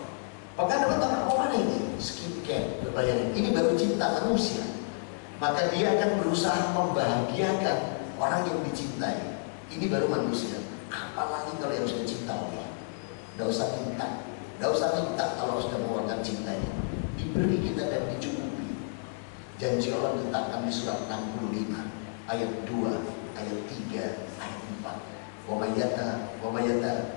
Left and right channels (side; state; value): right; silent; digital silence